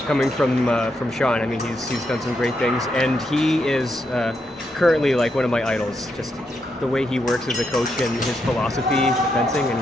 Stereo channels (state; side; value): normal; both; correlation 0.81